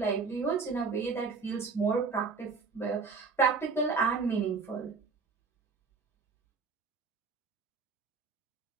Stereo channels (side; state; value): left; quieter; 4.8 dB